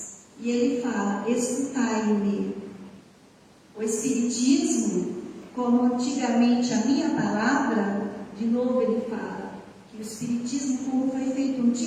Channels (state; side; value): identical; both; correlation 1.00